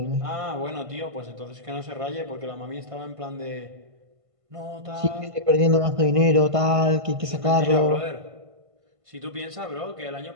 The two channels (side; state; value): left; late; 1.5 ms